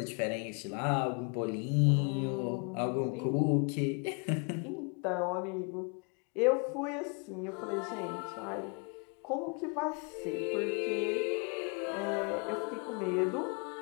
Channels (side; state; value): right; quieter; 35.1 dB